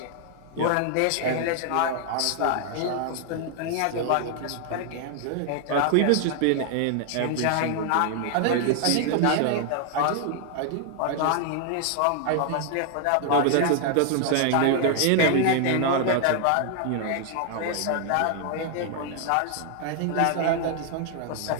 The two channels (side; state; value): both; different; correlation 0.00